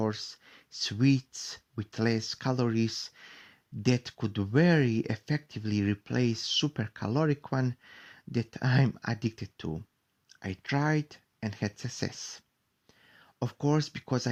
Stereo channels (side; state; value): both; identical; correlation 1.00